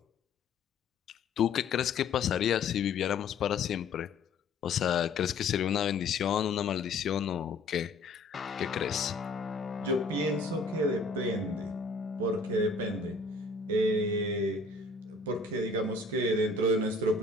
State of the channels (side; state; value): right; quieter; 3.6 dB